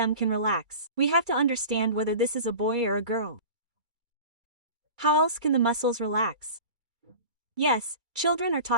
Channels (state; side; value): late; left; 2.2 ms